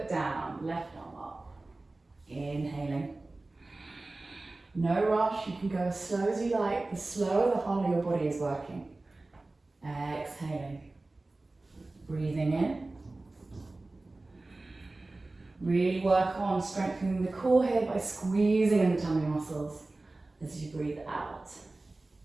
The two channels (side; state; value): left; quieter; 3.1 dB